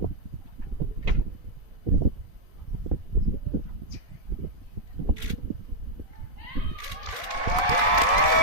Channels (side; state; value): left; late; 4.0 ms